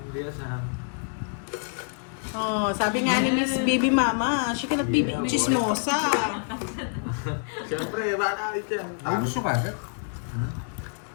Maria, sang. Oh, sabi nga ni Miss Baby Mama, she cannot be Yeah, boy. chismosa. Siyempre, baka ulit yan. Ay, gusto ka agad?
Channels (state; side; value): silent; right; 60 dB below the other